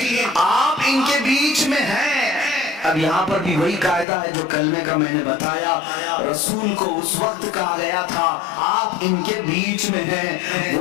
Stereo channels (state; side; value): drops out; right; at 4.0 s